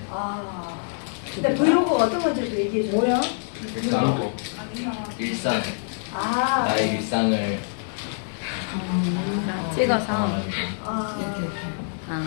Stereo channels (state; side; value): silent; right; digital silence